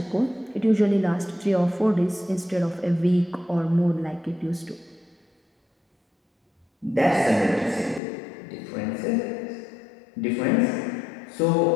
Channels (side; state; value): right; drops out; at 8.0 s